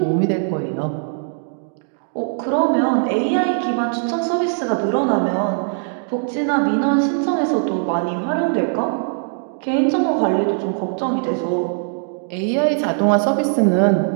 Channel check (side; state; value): left; silent; digital silence